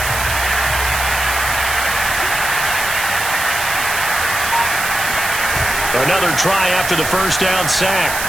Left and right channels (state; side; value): noise; right; hiss, 5 dB below the sound